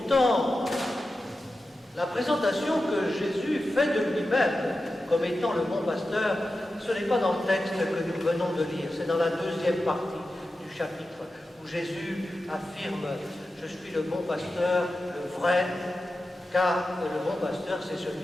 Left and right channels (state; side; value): normal; both; correlation 0.92